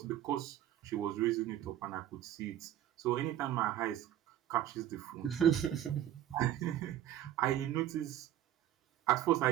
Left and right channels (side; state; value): left; quieter; 11.8 dB